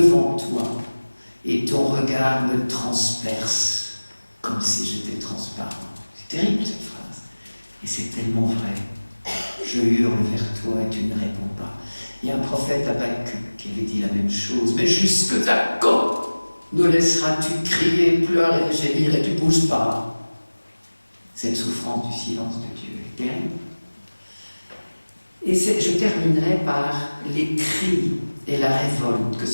toi, et ton regard me transperce, comme si j'étais transparent. C'est terrible cette phrase, et c'est tellement vrai. Je hurle vers toi, et tu ne réponds pas. Il y a un prophète Habakkuk qui avait dit la même chose. Mais jusque à quand nous laisseras-tu crier, pleurer, gémir et tu ne bouges pas? Cette souffrance du silence de Dieu est terrible. Et je terminerai par les cris et la révolte que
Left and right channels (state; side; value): inverted; both; correlation -1.00